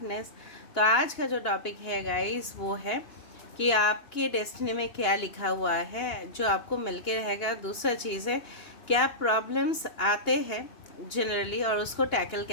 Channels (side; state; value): right; late; 2.8 ms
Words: तो आज का जो topic है गाइस वो है कि आपके डेस्टिनी में क्या लिखा हुआ है जो आपको मिलके रहेगा। दूसरा चीज़ है क्या प्रॉब्लम्स आते हैं जनरली और उसको टैकल